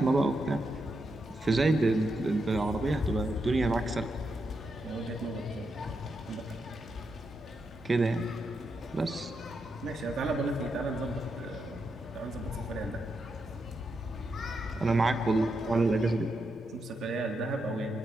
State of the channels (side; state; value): both; normal; correlation 0.84